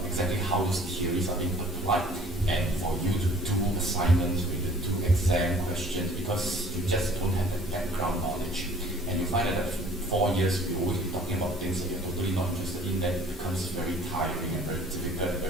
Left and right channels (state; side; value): normal; both; correlation 0.51